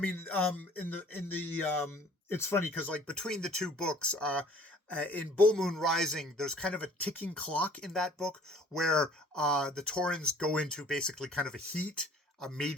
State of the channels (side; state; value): both; normal; correlation 0.53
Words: it's funny because like between the two books, in Bull Moon Rising, there's kind of a ticking clock in that book where the Taurens go into basically kind of a heat, a